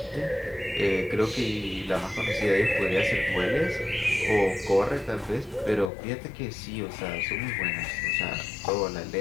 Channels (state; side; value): drops out; right; at 5.9 s